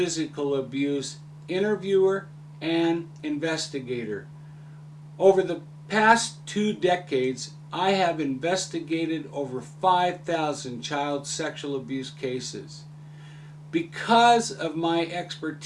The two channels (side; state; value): both; identical; correlation 1.00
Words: abuse interviewer and investigator. Over the past 2 decades, I have investigated over 5,000 child sexual abuse cases. Because of my